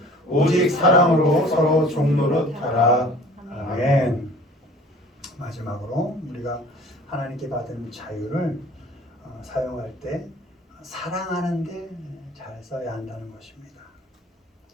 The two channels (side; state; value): both; normal; correlation 0.48